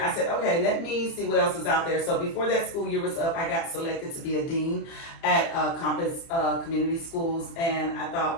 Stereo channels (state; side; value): late; right; 30 ms